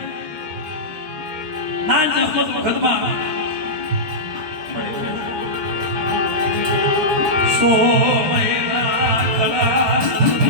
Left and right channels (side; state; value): left; late; 13 ms